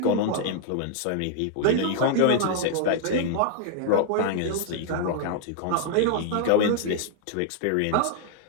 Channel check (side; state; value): both; different; correlation 0.00